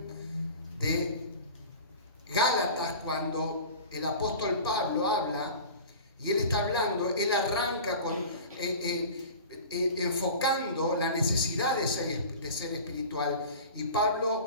de Gálatas, cuando el apóstol Pablo habla, y él está hablando, él arranca enfocando la necesidad de ser espiritual. Y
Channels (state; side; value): inverted; both; correlation -0.38